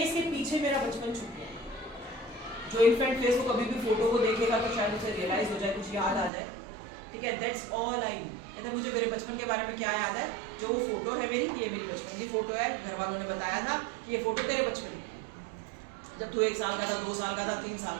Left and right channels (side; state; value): left; drops out; at 6.3 s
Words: के पीछे मेरा बचपन छुप गया। जो इन्फेंट फेस को कभी भी फोटो को देखेगा तो शायद उसे रियलाइज हो जाए, कुछ याद आ जाए, ठीक है। That's all I know. कहते मुझे मेरे बचपन के बारे में क्या याद है, जो वो फोटो है मेरी, ये मेरी बचपन की फोटो है, घर वालों ने बताया था कि ये फोटो तेरे बचपन की है, जब तू 1 साल का था, 2 साल का था, 3 साल